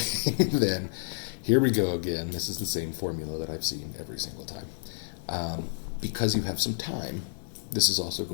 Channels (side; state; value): right; silent; digital silence